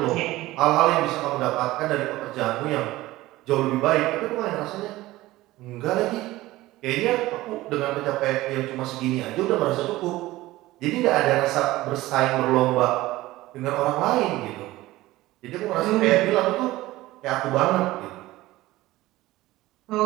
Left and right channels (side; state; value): left; quieter; 17.6 dB